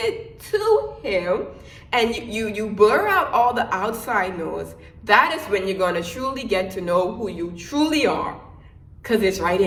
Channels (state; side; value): identical; both; correlation 1.00